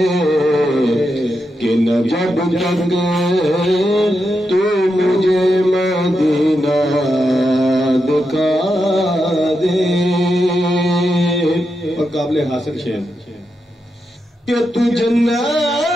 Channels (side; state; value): both; normal; correlation 0.86